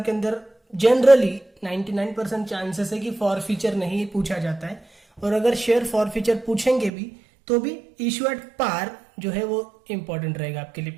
के अंदर जनरली 99% चांसेस है कि फॉरफीचर नहीं पूछा जाता है, और अगर शेयर फॉरफीचर पूछेंगे भी तो भी इशू एट पार जो है वो इंपॉर्टेंट रहेगा आपके लिए,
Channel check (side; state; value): left; drops out; at 6.9 s